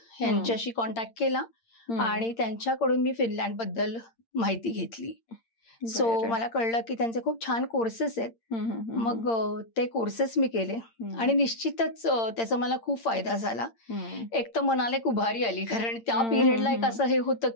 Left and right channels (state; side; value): late; right; 8.8 ms